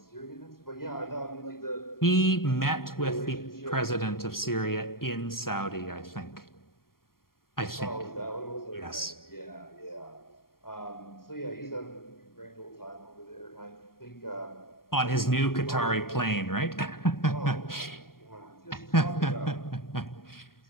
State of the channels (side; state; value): right; late; 0.92 ms